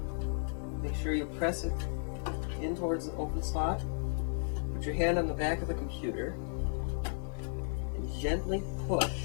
make sure you press it in towards the open slot, put your hand on the back of the computer, and gently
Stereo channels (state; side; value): silent; right; digital silence